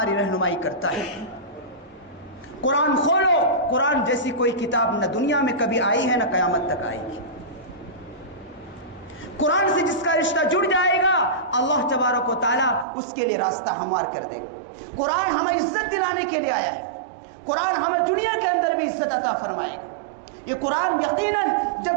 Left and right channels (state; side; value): drops out; left; at 12.9 s